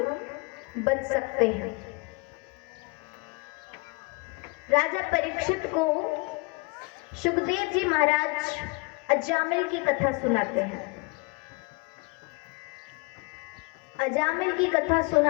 बच सकते हैं। राजा परीक्षित को सुखदेव जी महाराज अजामिल की कथा सुनाते हैं। अजामिल की कथा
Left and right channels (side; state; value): right; quieter; 28.4 dB